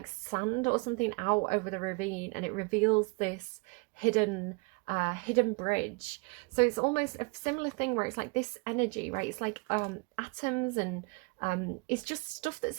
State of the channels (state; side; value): quieter; left; 30.2 dB